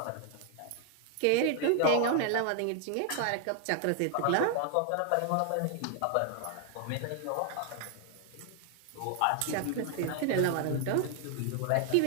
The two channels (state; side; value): different; both; correlation 0.00